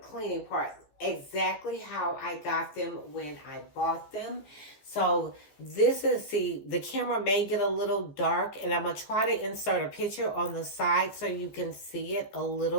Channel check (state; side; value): late; right; 14 ms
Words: part, exactly how I got them when I bought them. So this is, see, the camera may get a little dark, and I'm going to try to insert a picture on the side so you can see it a